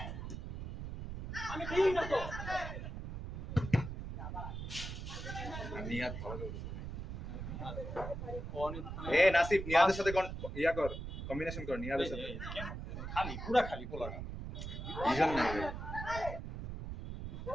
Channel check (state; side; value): noise; right; rumble, 7 dB below the sound